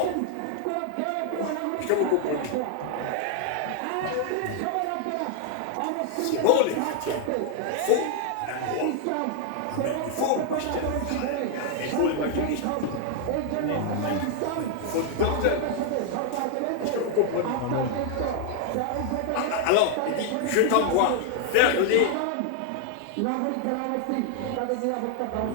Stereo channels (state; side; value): different; both; correlation 0.00